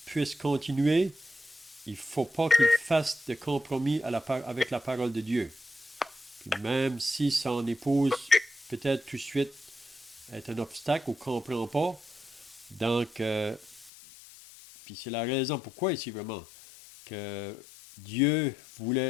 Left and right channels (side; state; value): right; drops out; at 13.9 s